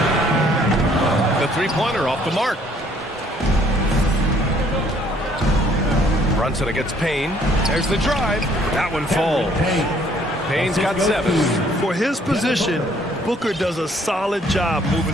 The three-pointer off the mark. Brunson against Payne. There's the drive. That one falls. Payne's got 7. For his position, Booker does a solid job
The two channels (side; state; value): both; normal; correlation 0.62